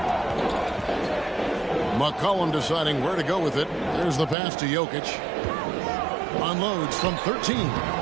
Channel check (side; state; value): left; drops out; at 4.4 s